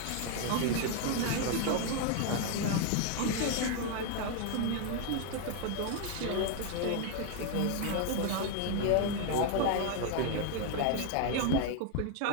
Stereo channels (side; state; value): both; different; correlation 0.01